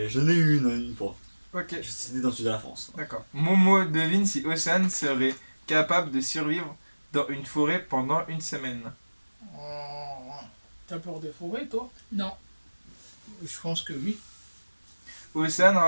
j'en ai eu une fois. Ok, C'était dans le sud de la France. d'accord. Momo devine si Océane serait capable de survivre dans une forêt pendant une semaine. Oh. T'as peur des forêts, toi? Non. Je pense que oui. Océane,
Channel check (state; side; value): inverted; both; correlation -1.00